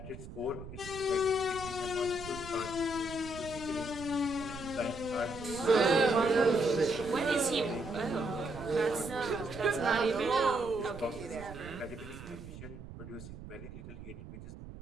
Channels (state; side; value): noise; right; rumble, 13 dB below the sound